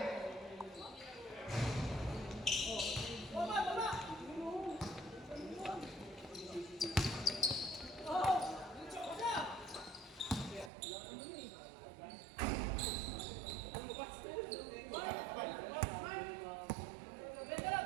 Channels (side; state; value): left; drops out; at 10.7 s